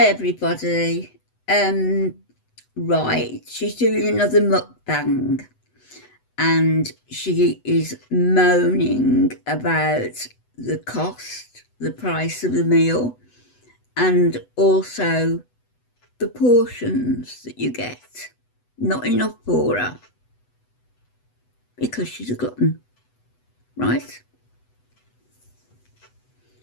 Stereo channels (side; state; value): right; late; 8.0 ms